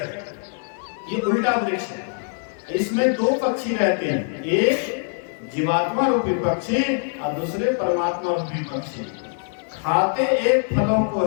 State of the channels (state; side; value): silent; right; 63 dB below the other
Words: ये उल्टा वृक्ष है। इसमें दो पक्षी रहते हैं, एक जीवात्मा रूपी पक्षी और दूसरे परमात्मा रूपी पक्षी। खाते एक फलों को